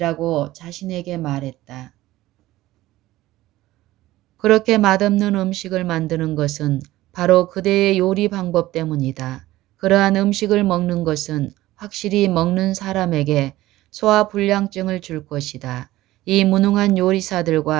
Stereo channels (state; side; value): quieter; left; 16.5 dB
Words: 자신에게 말했다. 그렇게 맛없는 음식을 만드는 것은 바로 그대의 요리 방법 때문이다. 그러한 음식을 먹는 것은 확실히 먹는 사람에게 소화불량증을 줄 것이다. 이 무능한